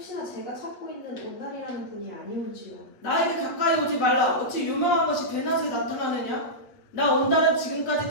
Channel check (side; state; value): right; late; 8.5 ms